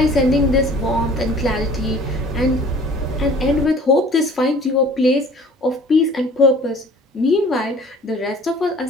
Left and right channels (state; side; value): normal; both; correlation 0.49